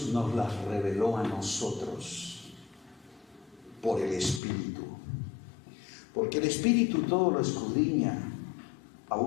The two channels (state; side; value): drops out; right; at 4.4 s